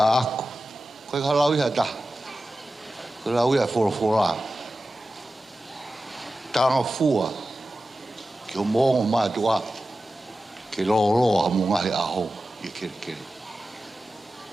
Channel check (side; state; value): both; normal; correlation 0.94